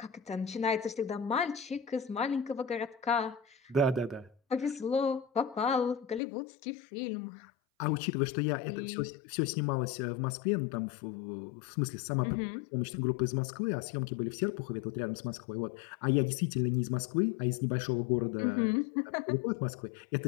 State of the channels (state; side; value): drops out; right; at 6.2 s